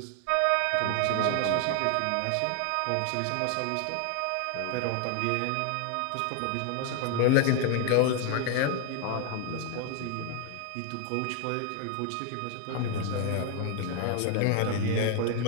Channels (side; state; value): both; different; correlation 0.00